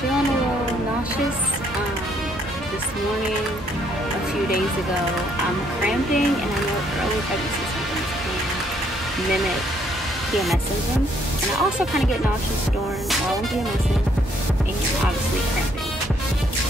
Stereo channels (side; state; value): both; normal; correlation 0.69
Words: a little nauseous this morning, a few days ago. I'm cramping, and I know early pregnancy symptoms can mimic PMS symptoms, and I also kind of get nauseous during while I'm PMSing and obviously cramping.